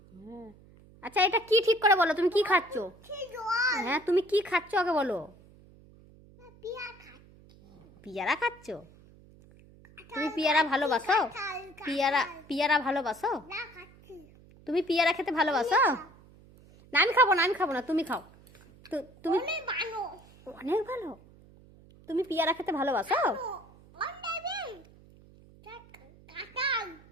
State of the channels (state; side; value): noise; right; hum, 24 dB below the sound